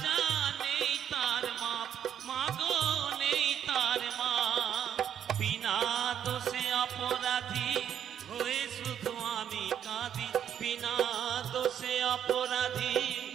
নেই তার মাপ, মাগো নেই তার মাপ। বিনা দোষে অপরাধী হয়ে শুধু আমি কাঁদি, বিনা দোষে অপরাধী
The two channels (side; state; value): left; quieter; 9.2 dB